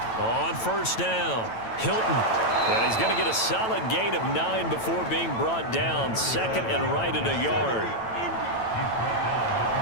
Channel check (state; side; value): late; right; 9.0 ms